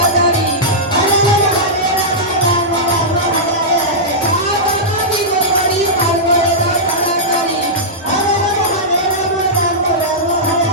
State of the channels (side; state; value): both; normal; correlation -0.12